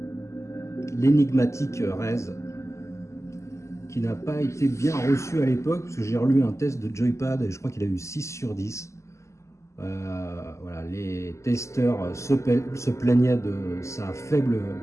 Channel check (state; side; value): late; right; 0.14 ms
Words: L'énigmatique Rez, qui n'a pas été bien reçu à l'époque, parce que j'ai relu un test de Joypad et je crois qu'il a eu 6 sur 10. Voilà, les testeurs se plaignaient de sa faible